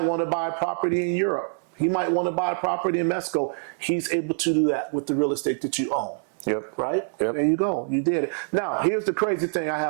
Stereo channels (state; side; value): silent; left; digital silence